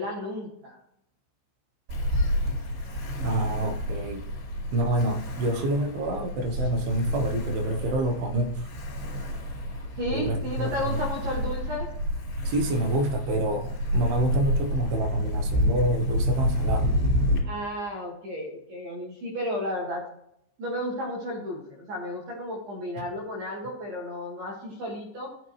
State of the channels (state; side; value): late; left; 15 ms